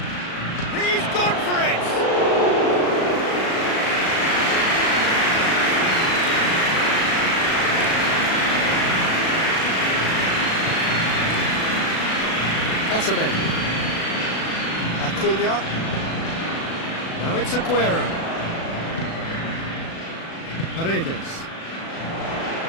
He's gone for it! Otamendi. Acuna. Now it's Aguero. Paredes.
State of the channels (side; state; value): right; late; 36 ms